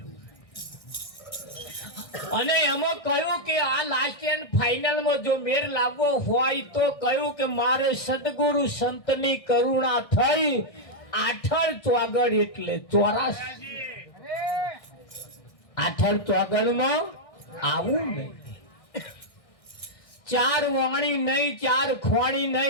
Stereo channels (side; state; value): right; late; 1.6 ms